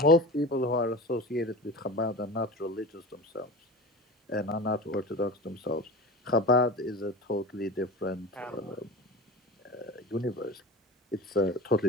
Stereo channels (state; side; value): normal; both; correlation 0.32